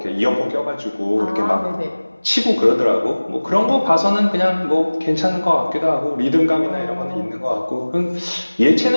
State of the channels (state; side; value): inverted; both; correlation -1.00